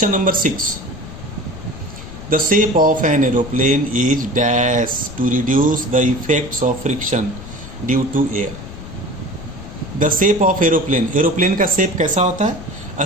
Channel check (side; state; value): left; noise; rumble, 13 dB below the sound